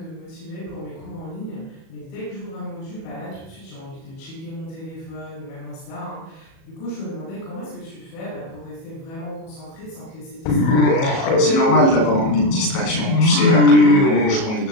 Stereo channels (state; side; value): late; right; 37 ms